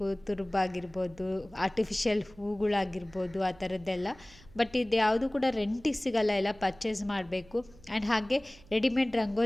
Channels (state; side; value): noise; right; hum, 24 dB below the sound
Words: ತುರುಬಾಗಿರ್ಬೋದು, ಆರ್ಟಿಫಿಷಿಯಲ್ ಹೂಗಳಾಗಿರ್ಬೋದು, ಆ ಥರದ್ದೆಲ್ಲ. ಬಟ್ ಇದು ಯಾವುದು ಕೂಡ ರೆಂಟಿಗೆ ಸಿಗಲ್ಲ, ಎಲ್ಲ ಪರ್ಚೇಸ್ ಮಾಡಬೇಕು. ಆ್ಯಂಡ್ ಹಾಗೆ ರೆಡಿಮೇಡ್